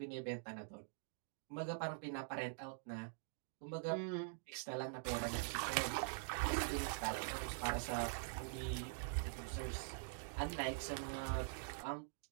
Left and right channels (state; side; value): silent; left; digital silence